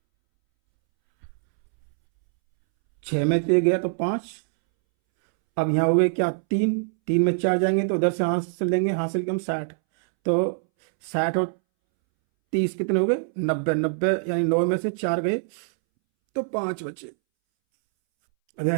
6 में से गया तो 5, अब यहाँ हो गए क्या 3, 3 में 4 जाएंगे तो उधर से हासिल लेंगे, हासिल कम 60, तो 60 और 30 कितने हो गए 90, 90 यानी 9 में से 4 गए तो 5 बचे, अगर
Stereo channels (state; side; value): silent; left; 63 dB below the other